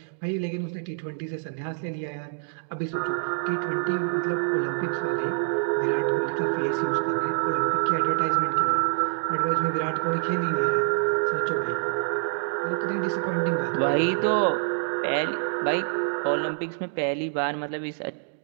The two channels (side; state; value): left; silent; digital silence